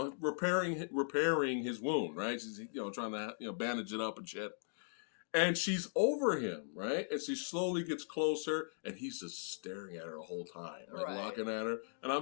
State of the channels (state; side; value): silent; right; digital silence